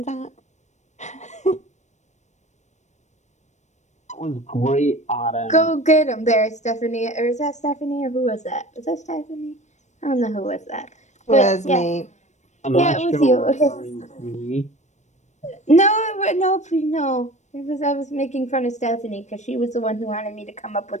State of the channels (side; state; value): right; late; 0.34 ms